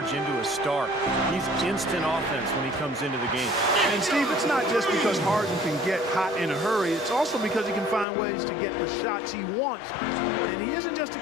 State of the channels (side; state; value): right; drops out; at 8.1 s